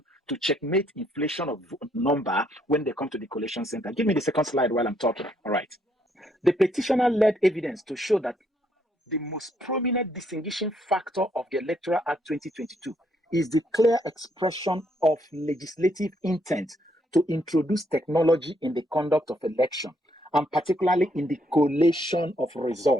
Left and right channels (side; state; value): both; normal; correlation 0.72